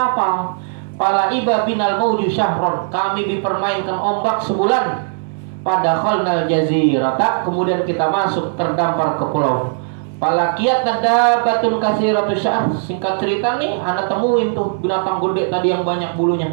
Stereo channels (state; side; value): silent; left; digital silence